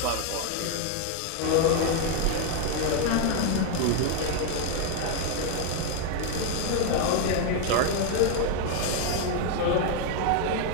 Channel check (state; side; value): different; both; correlation 0.01